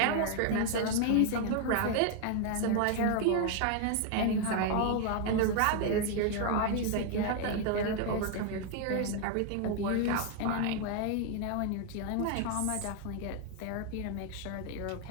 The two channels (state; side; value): different; both; correlation 0.01